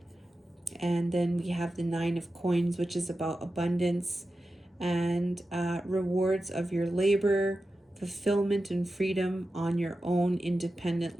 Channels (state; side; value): normal; both; correlation 0.92